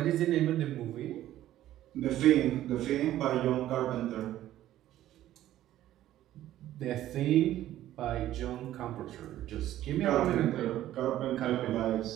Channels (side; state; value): left; quieter; 13.4 dB